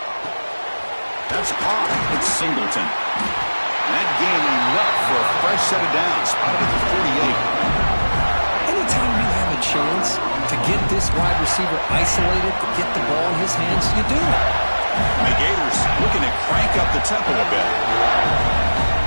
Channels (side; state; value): both; inverted; correlation -1.00